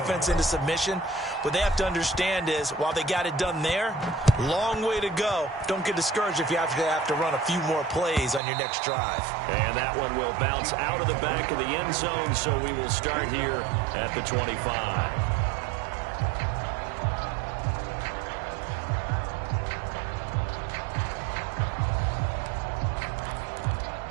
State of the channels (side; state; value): left; drops out; at 8.4 s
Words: into submission. What they have to understand is, while they got it done there, long way to go. Don't get discouraged if you have to run a few more plays on your next drive. And that one will bounce out of the back of the end zone, so we will start here at the 25.